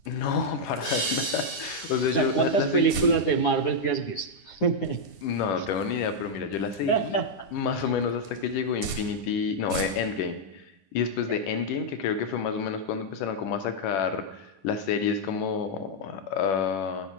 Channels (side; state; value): right; late; 9.8 ms